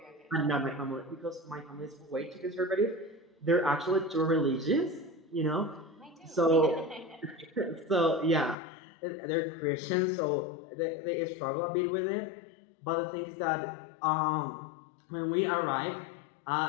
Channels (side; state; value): right; drops out; at 8.6 s